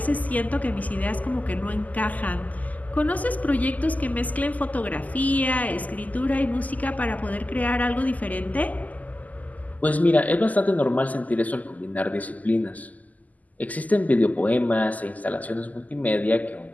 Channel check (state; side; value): late; right; 0.078 ms